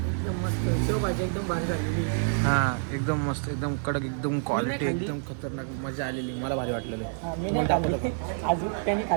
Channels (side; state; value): left; silent; 59 dB below the other